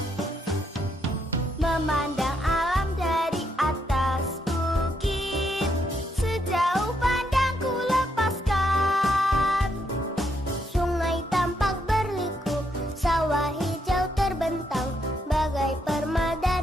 Memandang alam dari atas bukit, sejauh pandangku lepaskan. Sungai tampak berliku, sawah hijau terbentang, bagai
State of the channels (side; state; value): both; normal; correlation 0.77